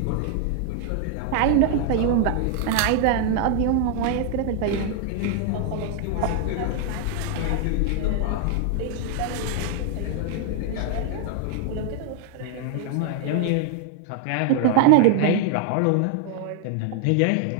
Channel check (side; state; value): both; different; correlation 0.00